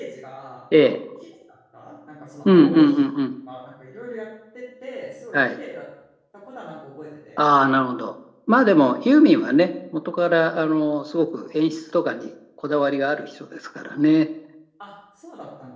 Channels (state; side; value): identical; both; correlation 1.00